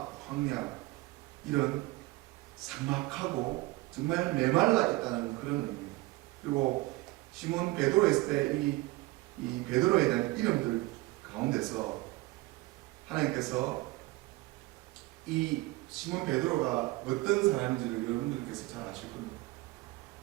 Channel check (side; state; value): left; quieter; 20.4 dB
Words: 황야, 이런 삭막하고 정말 메말라 있다는 그런 의미입니다. 그리고 시몬 베드로 했을 때 이 베드로에 대한 이름들 가운데서 하나님께서 이 시몬 베드로가 어떤 사람인지를 여러분들께서 잘 아실 겁니다.